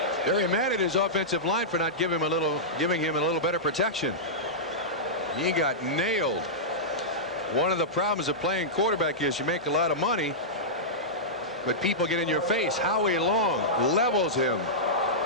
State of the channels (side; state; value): both; normal; correlation -0.13